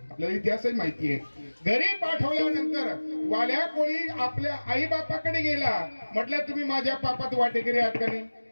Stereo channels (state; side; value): inverted; both; correlation -1.00